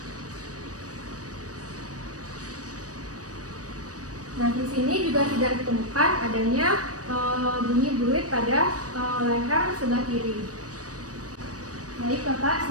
Nah, di sini juga tidak ditemukan adanya bunyi berit pada leher sebelah kiri. Baik, Bapak,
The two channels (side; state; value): left; late; 0.67 ms